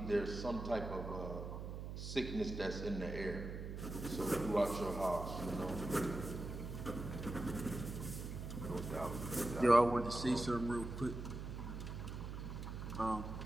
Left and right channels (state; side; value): noise; right; hum, 6 dB below the sound